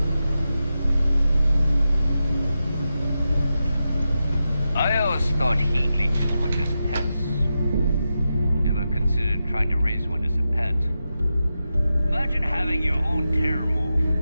I always thought heat leeches were just pests. Never considered trying to raise one as a pet. Imagine having your own terramorph.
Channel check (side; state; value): both; inverted; correlation -0.90